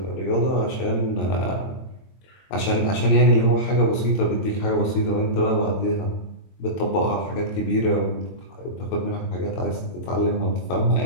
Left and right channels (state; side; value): late; right; 22 ms